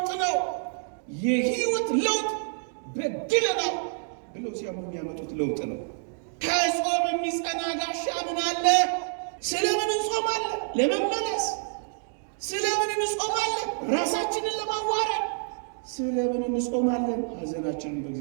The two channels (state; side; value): silent; left; digital silence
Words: ነው። የህይወት ለውጥ በድለናል ብለው ሲያምኑ የሚያመጡት ለውጥ ነው። ከጾም የሚጸና ጋሻ ምን አለ? ስለምን እንጾማለን? ለመመለስ። ስለምን እንጾማለን? ራሳችንን ለማዋረድ። ስለምን እንጾማለን? ሐዘናችንን